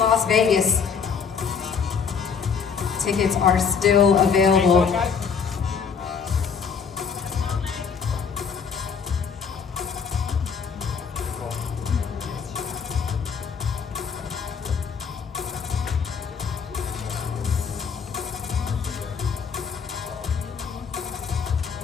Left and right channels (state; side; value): quieter; right; 6.3 dB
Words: Vegas. Tickets are still available.